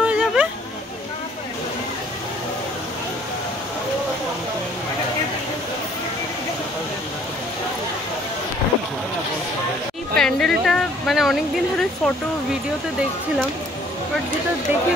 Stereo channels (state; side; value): normal; both; correlation 0.59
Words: হয়ে যাবে। এই প্যান্ডেলটা মানে অনেকদিন ধরে ফটো ভিডিওতে দেখছিলাম, বাট যেটা দেখে